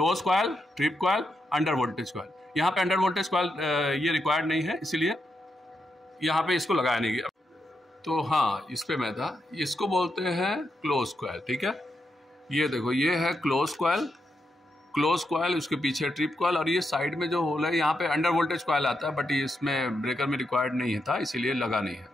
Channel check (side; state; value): both; normal; correlation 0.83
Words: coil, trip coil, under voltage coil. यहाँ पे अंडर वोल्टेज कॉयल ये रिक्वायर्ड नहीं है, इसलिए यहाँ पे इसको लगाया नहीं गया। तो हाँ, इस पे मैं था, इसको बोलते हैं क्लोज कॉयल, ठीक है। ये देखो ये है क्लोज कॉयल, क्लोज कॉयल, उसके पीछे ट्रिप कॉयल, और ये साइड में जो होल है यहाँ पे अंडर वोल्टेज कॉयल आता है, बट ये इसमें ब्रेकर में रिक्वायर्ड नहीं था, इसीलिए लगा नहीं है,